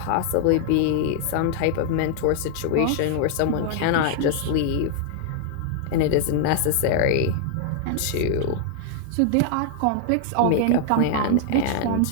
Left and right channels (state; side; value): different; both; correlation -0.01